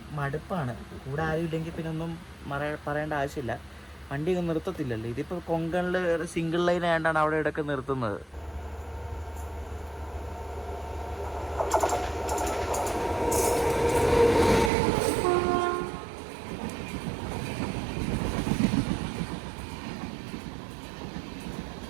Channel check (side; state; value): left; drops out; at 14.7 s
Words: മടുപ്പാണ്. കൂടെ ആരും ഇല്ലെങ്കിൽ പിന്നെ ഒന്നും പറയേണ്ട ആവശ്യമില്ല. വണ്ടി ഒന്നും നിർത്തത്തില്ലല്ലോ. ഇതിപ്പോൾ കൊങ്കണിൽ സിംഗിൾ ലൈൻ ആയതുകൊണ്ടാണ് അവിടെ ഇടയ്ക്ക് നിർത്തുന്നത്.